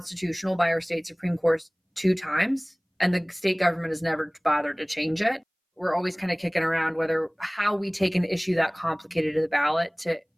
by our state Supreme Court 2 times, and the state government has never bothered to change it. We're always kind of kicking around how we take an issue that complicated to the ballot to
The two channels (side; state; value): both; identical; correlation 1.00